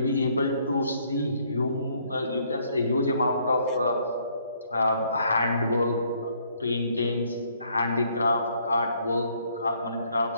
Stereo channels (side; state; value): both; inverted; correlation -0.67